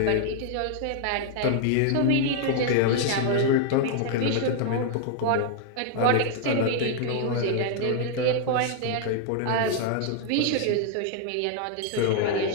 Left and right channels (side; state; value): both; different; correlation 0.00